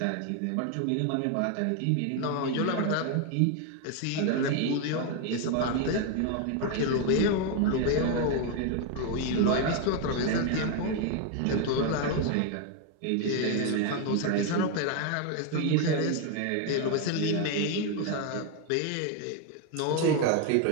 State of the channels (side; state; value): both; different; correlation 0.01